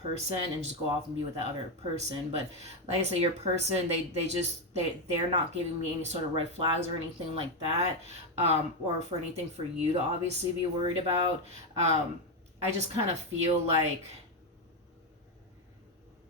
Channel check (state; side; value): normal; both; correlation 0.07